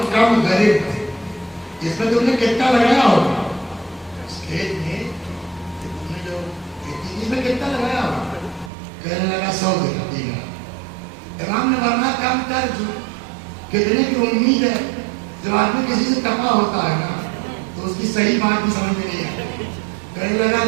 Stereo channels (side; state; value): left; drops out; at 8.7 s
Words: کم غریب اس میں تم نے کتنا لگایا ہوگا اس کھیت میں تم نے جو اس میں کتنا لگایا ہوگا. کہنے لگا 100 دینار. امام نے فرمایا کم کر جو کتنے کی امید ہے. جب آدمی کسی سے تپا ہوتا ہے نا تو اس کی صحیح بات بھی سمجھ میں نہیں آتی. کہنے لگا